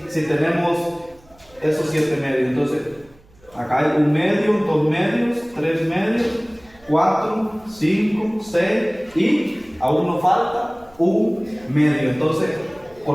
tenemos esos 7 medios. Entonces, acá hay 1 medio, 2 medios, 3 medios, 4, 5, 6 y aún nos falta 1 medio. Entonces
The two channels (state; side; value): noise; right; hum, 28 dB below the sound